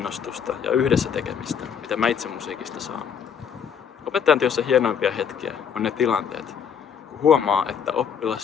ja yhdessä tekemistä, mitä mä itse musiikista saan. Opettajan työssä hienoimpia hetkiä on ne tilanteet, kun huomaa, että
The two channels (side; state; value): right; quieter; 7.5 dB